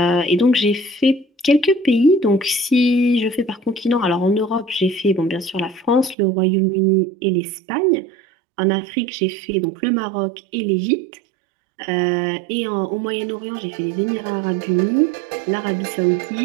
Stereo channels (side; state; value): left; drops out; at 6.2 s